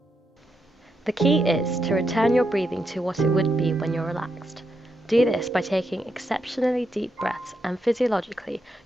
The key is to return your breathing to what it would be when you're relaxed. Do this by taking exceptionally deep breaths, and physiologically,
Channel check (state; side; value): normal; both; correlation 0.82